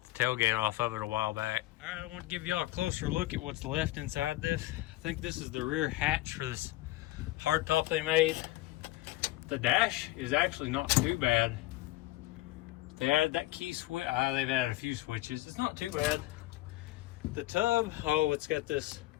the tailgate off of it a while back. All right, I want to give y'all a closer look at what's left inside this. I think this is the rear hatch for this hardtop they made. The dash is actually not too bad. They added that key switch. They've added a few switches. It's not too bad. The tub, oh, it's got this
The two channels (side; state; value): right; quieter; 18.1 dB